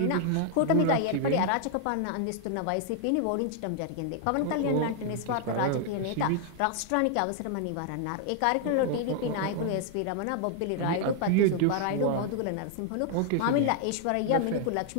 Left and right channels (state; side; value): different; both; correlation 0.00